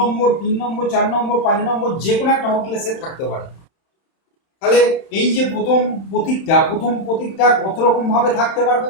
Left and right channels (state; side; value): late; right; 31 ms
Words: 3 নম্বর, 4 নম্বর, 5 নম্বর, যে কোনো একটা হোটেলে সে থাকতে পারে। তাহলে এই যে প্রথম প্রতীকটা কত রকম ভাবে থাকতে পারবে,